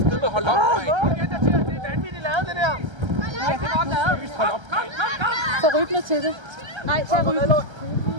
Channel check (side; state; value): left; late; 1.3 ms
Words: hold op, mand! Det er vanvittigt lavet, det der. Rigtig godt lavet. Hold op! Så rybner til det. Nej, så rybner.